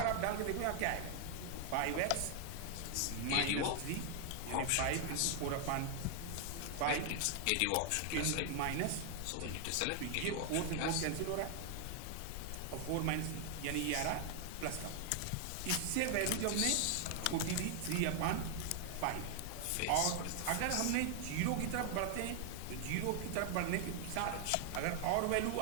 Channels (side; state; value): both; different; correlation 0.00